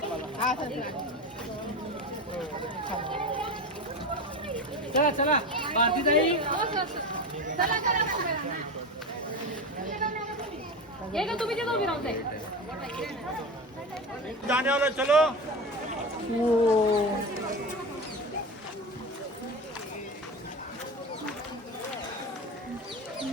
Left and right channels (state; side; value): normal; both; correlation 0.24